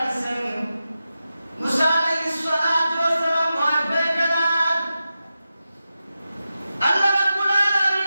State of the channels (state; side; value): inverted; both; correlation -0.91